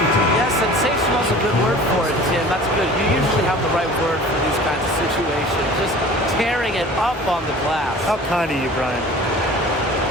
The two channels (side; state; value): both; normal; correlation 0.43